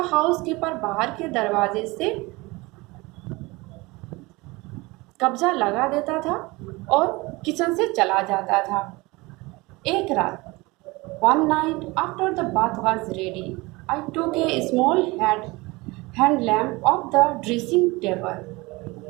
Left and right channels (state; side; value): quieter; left; 23.2 dB